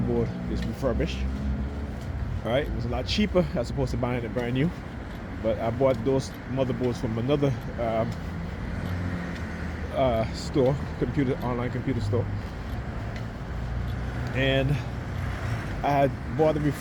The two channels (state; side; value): identical; both; correlation 1.00